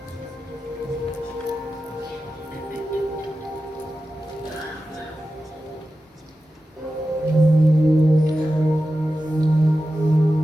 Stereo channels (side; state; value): both; normal; correlation 0.92